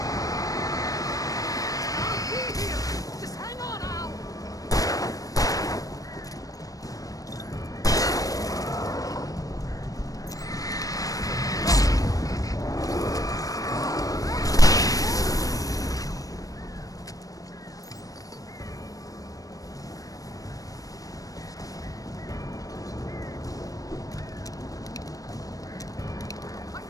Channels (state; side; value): late; right; 0.17 ms